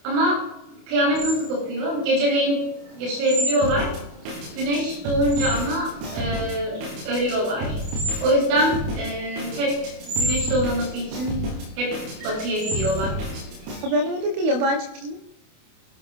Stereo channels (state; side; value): late; left; 28 ms